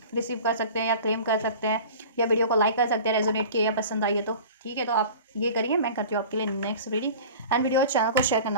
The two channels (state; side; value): inverted; both; correlation -0.39